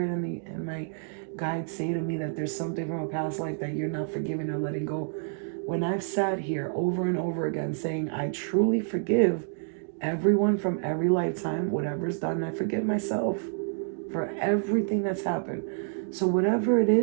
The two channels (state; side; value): silent; left; digital silence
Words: and my guides say to me that there's something from a past life that you're not forgiving or letting go. When I've sat here over and over again saying I truly forgive everyone from every lifetime, whatever's done, I forgive myself for everything that's happened. So whatever it